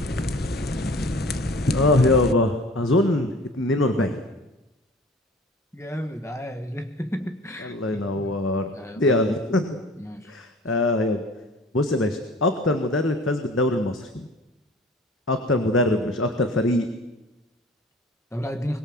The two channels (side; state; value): both; normal; correlation 0.44